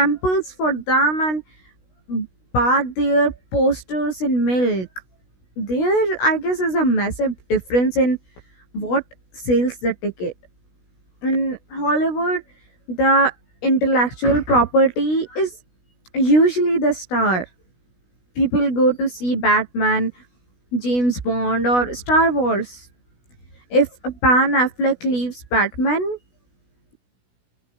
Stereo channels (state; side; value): late; right; 16 ms